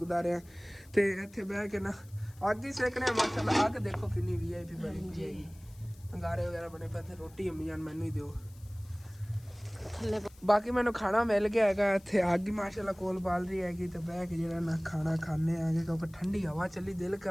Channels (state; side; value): noise; left; hiss, 26 dB below the sound